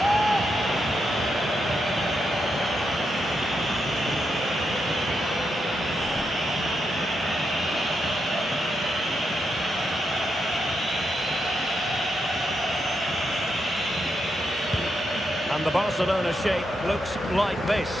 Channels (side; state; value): both; normal; correlation 0.83